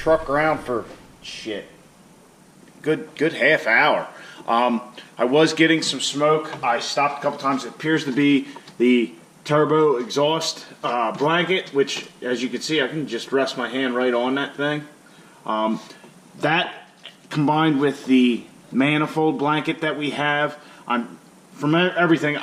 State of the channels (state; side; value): identical; both; correlation 1.00